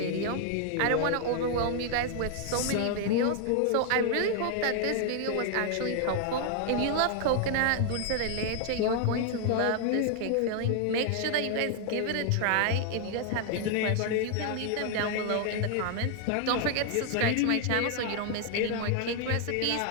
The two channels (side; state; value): both; different; correlation 0.00